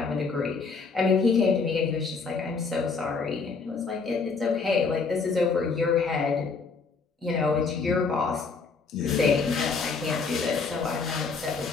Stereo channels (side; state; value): right; quieter; 4.7 dB